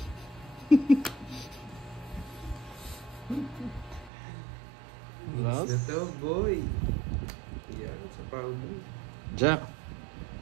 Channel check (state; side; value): drops out; left; at 4.1 s